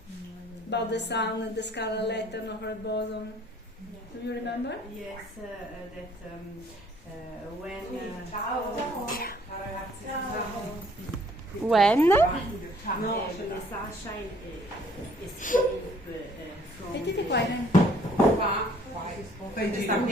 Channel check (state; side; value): normal; both; correlation 0.59